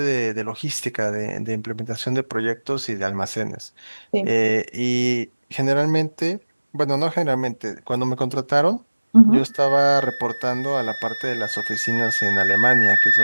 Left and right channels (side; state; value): both; inverted; correlation -1.00